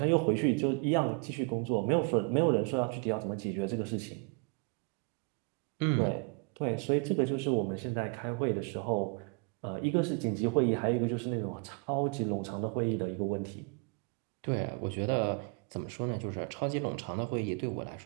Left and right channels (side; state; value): left; quieter; 35.8 dB